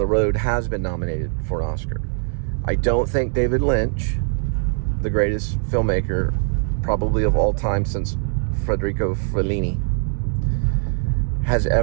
road has been nominated for an Oscar. I don't think David Lynch, the greatest filmmaker probably of all time since Federico Fellini, has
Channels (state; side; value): silent; left; 64 dB below the other